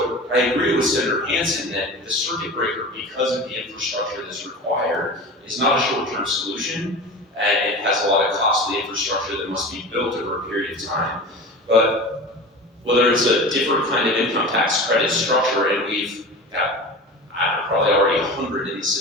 I agree with Senator Hanson that the circuit breaker, because of the infrastructure that's required, is not a short-term solution, and it has a lot of costly infrastructure that must be built over a period of time. But whether it's a different kind of income tax credit structure, and we've got, probably already 100 in the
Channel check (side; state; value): both; normal; correlation 0.33